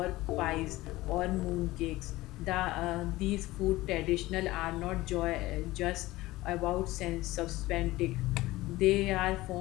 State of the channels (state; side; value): quieter; right; 18.4 dB